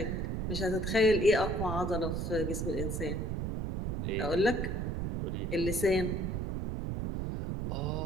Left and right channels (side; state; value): right; noise; rumble, 1 dB below the sound